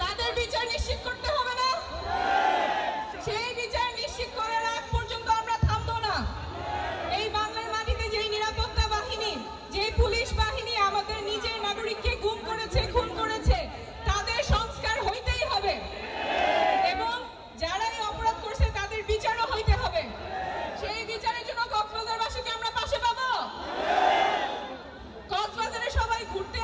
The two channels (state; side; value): identical; both; correlation 1.00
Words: তাদের বিচার নিশ্চিত করতে হবে না? সেই বিচার নিশ্চিত করার আগ পর্যন্ত আমরা থামবো না। এই বাংলার মাটিতে যেই নিরাপত্তা বাহিনী, যেই পুলিশ বাহিনী আমাদের নিজের নাগরিককে গুম করেছে, খুন করেছে, তাদের সংস্কার হইতেই হবে এবং যারাই অপরাধ করছে তাদের বিচারও হইতে হবে। সেই বিচারের জন্য কক্সবাজারবাসীকে আমরা পাশে পাবো। কক্সবাজারে সবাই ঘুরতে